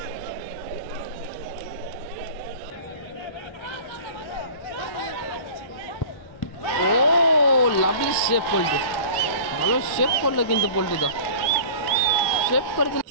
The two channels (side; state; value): right; late; 1.6 ms